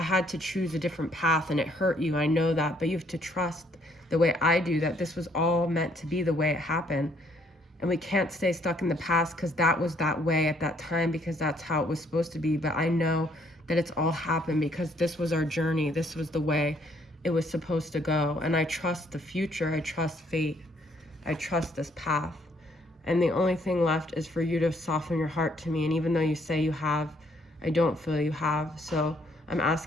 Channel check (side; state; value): both; normal; correlation 0.66